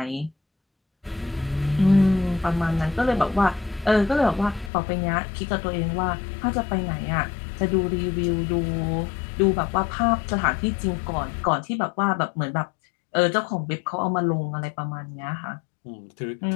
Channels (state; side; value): drops out; right; at 4.7 s